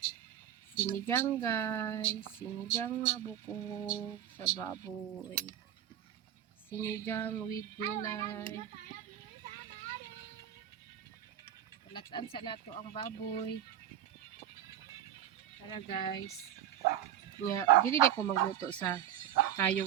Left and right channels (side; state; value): left; quieter; 10.8 dB